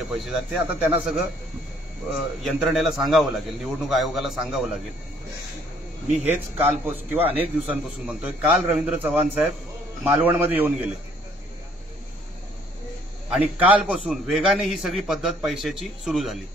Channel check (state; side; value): normal; both; correlation 0.62